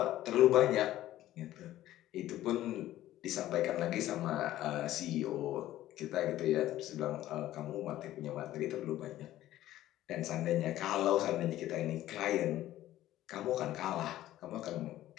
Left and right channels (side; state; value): right; quieter; 14.2 dB